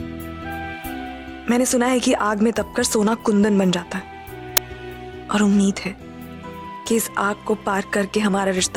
मैंने सुना है कि आग में तपकर सोना कुंदन बन जाता है, और उम्मीद है कि इस आग को पार करके हमारा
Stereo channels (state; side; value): identical; both; correlation 1.00